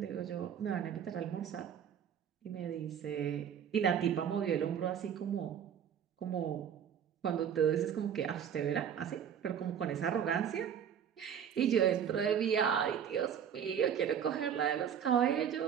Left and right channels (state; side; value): quieter; left; 8.5 dB